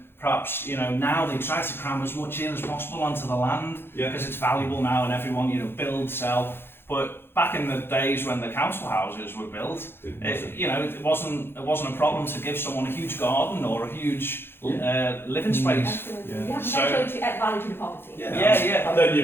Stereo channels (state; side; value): late; right; 0.11 ms